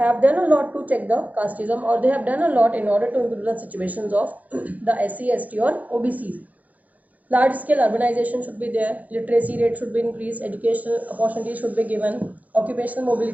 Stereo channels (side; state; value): left; late; 0.078 ms